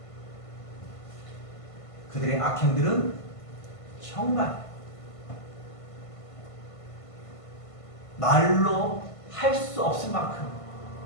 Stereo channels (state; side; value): late; right; 1.5 ms